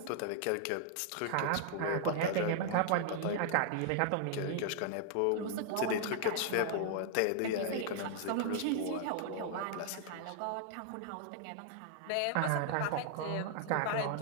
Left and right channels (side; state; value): both; different; correlation 0.00